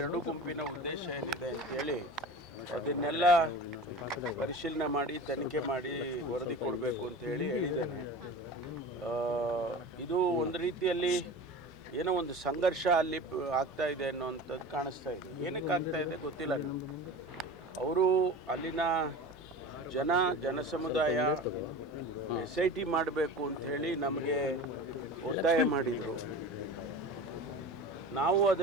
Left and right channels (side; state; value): both; normal; correlation 0.34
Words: ಎರಡು ಗುಂಪಿನ ಉದ್ದೇಶ ಏನಿದೆ ಅಂತೇಳಿ ಅದನ್ನೆಲ್ಲ ಪರಿಶೀಲನೆ ಮಾಡಿ ತನಿಖೆ ಮಾಡಿ ವರದಿ ಕೊಡಬೇಕು ಅಂತ ಹೇಳಿದ್ದೇನೆ. ಇದು ಒಂದು ರೀತಿಯಲ್ಲಿ ಏನೋ ಒಂದು ಸಂಘರ್ಷ ಅಲ್ಲಿ ಆಗ್ತಾ ಇದೆ ಅನ್ನೋವಂಥದ್ದು ಕಾಣಿಸ್ತಾ ಇದೆ. ಏನಕ್ಕೆ ಆಗ್ತಾ ಇದೆ ಗೊತ್ತಿಲ್ಲ ನಮಗೆ. ಅವರು ಅಲ್ಲಿನ ಜನಸಮುದಾಯ SIT ಮಾಡಬೇಕು ಅಂಥೇಳಿ ನಮಗೆ ಒತ್ತಾಯ ಮಾಡಿದರು. ನಾವು